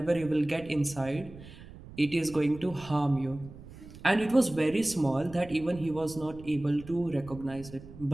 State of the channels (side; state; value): right; noise; rumble, 17 dB below the sound